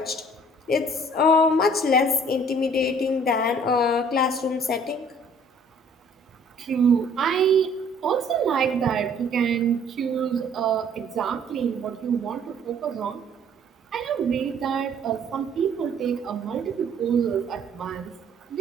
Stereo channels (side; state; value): both; normal; correlation 0.56